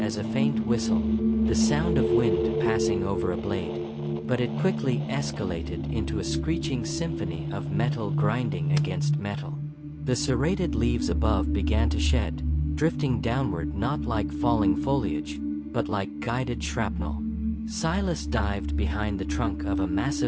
a faint whistle, the sound of wind passing over a blade, but it quickly escalated into a screeching symphony of metal grinding against metal. The serrated leaves above began to shed, drifting downward not like falling foliage, but like guided shrapnel. Silas dived behind the trunk of a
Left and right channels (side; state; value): both; identical; correlation 1.00